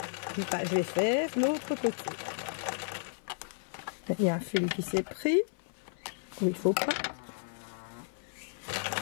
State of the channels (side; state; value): right; silent; 56 dB below the other